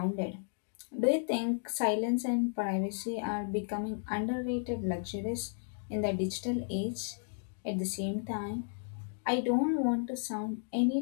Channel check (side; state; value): right; silent; digital silence